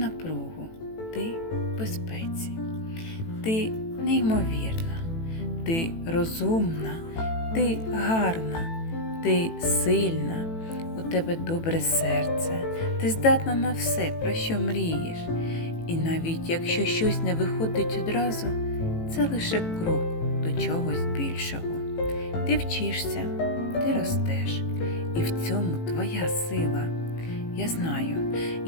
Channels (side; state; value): right; late; 18 ms